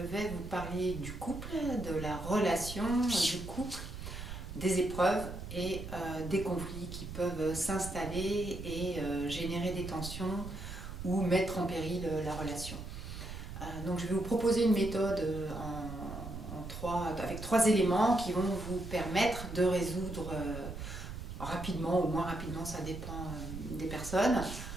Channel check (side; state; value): right; noise; rumble, 9 dB below the sound